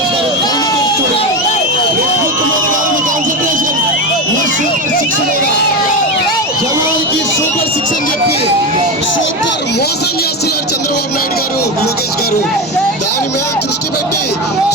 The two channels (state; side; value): normal; both; correlation 0.17